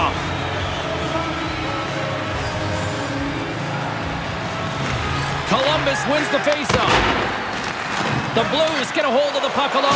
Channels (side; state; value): both; identical; correlation 1.00